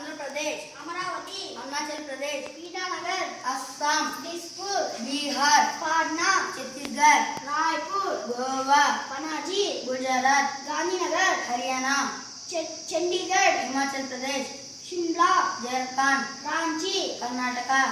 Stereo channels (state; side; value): identical; both; correlation 1.00